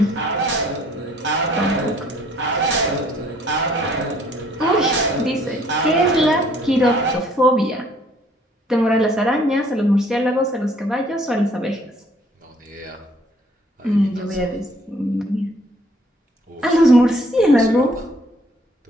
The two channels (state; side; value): normal; both; correlation 0.61